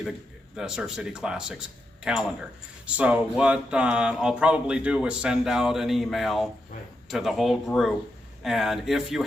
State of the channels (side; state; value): both; normal; correlation 0.84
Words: the Surf City Classics calendar. So what I'll probably do is send out an email to the whole group, and if you